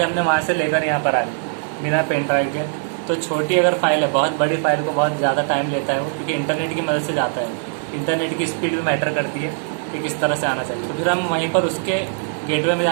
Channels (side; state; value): left; silent; 58 dB below the other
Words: हमने वहाँ से लेकर यहाँ पर आ गई बिना पेन ड्राइव के। तो छोटी अगर फाइल है, बहुत बड़ी फाइल को बहुत ज़्यादा टाइम लेता है वो, क्योंकि इंटरनेट की मदद से जाता है। इंटरनेट की स्पीड भी मैटर करती है कि किस तरह से आना चाहिए। तो फिर हम वहीं पर उसके गेटवे में